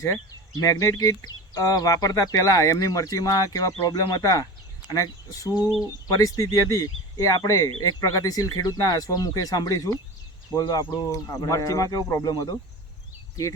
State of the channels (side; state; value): both; normal; correlation 0.31